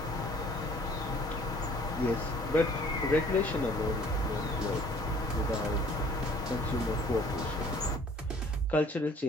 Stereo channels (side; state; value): both; normal; correlation 0.54